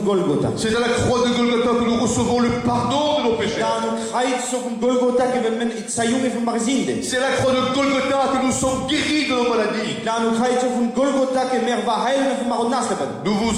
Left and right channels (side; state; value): both; identical; correlation 1.00